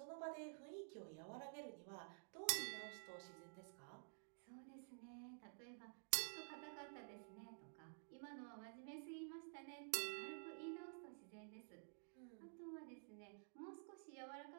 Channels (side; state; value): left; silent; digital silence